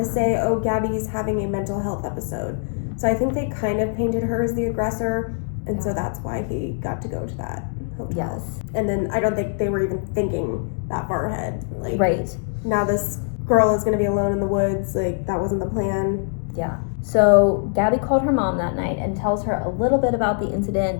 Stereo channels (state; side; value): silent; right; 64 dB below the other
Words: say, oh, Gabby's having a mental health episode. So I think they kind of painted her as the aggressor, and so that's why he got to go to that hotel. Yes. And then I don't think they were even thinking that far ahead. Like, right. Now this girl is going to be alone in the woods. Like, that wasn't the plan. Yeah. So Gabby called her mom that night and tells her a little bit about the